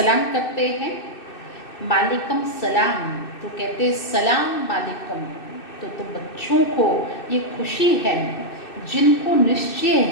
करते हैं, मालिकम सलाम, तो कहते सलाम मालिकम। तो तुम बच्चों को ये खुशी है जिनको निश्चय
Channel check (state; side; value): late; right; 2.6 ms